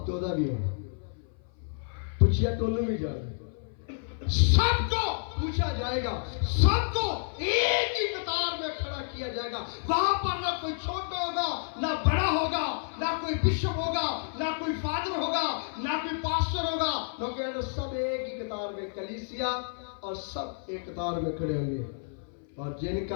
ਤੇ ਉਹਦਾ ਵੀ ਹੋਣਾ, ਪੁੱਛਿਆ تو ਉਹਨੂੰ ਵੀ ਜਾਣਾ, سب کو پوچھا جائے گا, سب کو ایک ہی قطار میں کھڑا کیا جائے گا. وہاں پر نہ کوئی چھوٹا ہوگا نہ بڑا ہوگا, نہ کوئی بشپ ہوگا نہ کوئی فادر ہوگا نہ کوئی پاسٹر ہوگا, کیونکہ سب ایک ہی قطار میں کلیسیا اور سب ایک قطار میں کھڑے ہوں گے. اور جن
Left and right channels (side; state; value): right; silent; 56 dB below the other